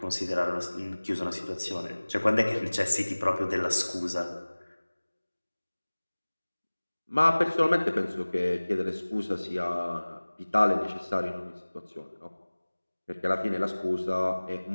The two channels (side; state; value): both; inverted; correlation -1.00